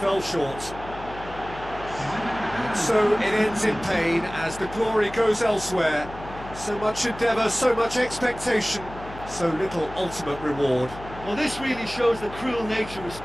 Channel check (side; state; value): left; noise; hum, 14 dB below the sound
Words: short. And so it ends in pain as the glory goes elsewhere. So much endeavour, so much expectation, so little ultimate reward. Well, this really shows the cruel nature of